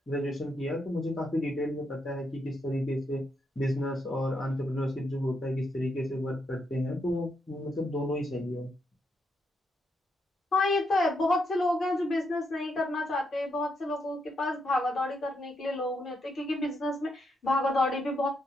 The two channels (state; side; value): normal; both; correlation 0.80